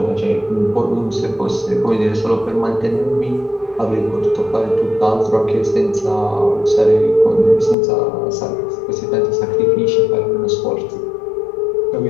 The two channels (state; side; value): drops out; right; at 7.8 s